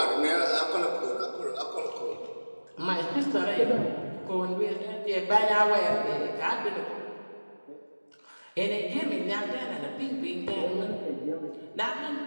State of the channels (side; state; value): both; inverted; correlation -1.00